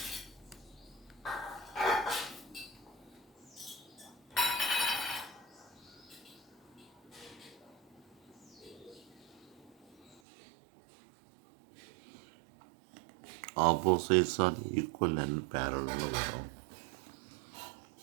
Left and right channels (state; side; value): drops out; left; at 10.2 s